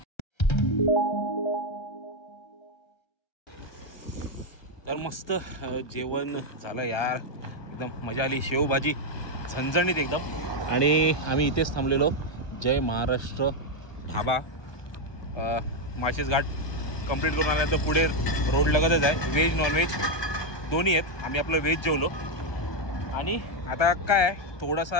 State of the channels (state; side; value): late; right; 1.2 ms